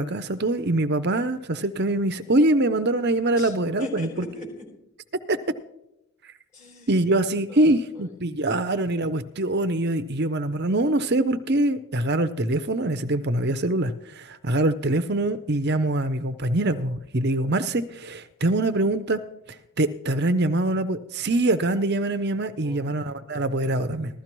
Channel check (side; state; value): both; normal; correlation 0.37